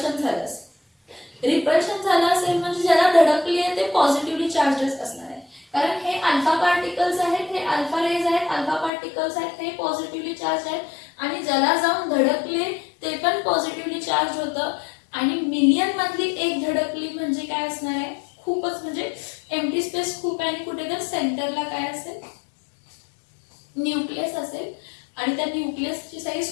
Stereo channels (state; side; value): drops out; right; at 8.9 s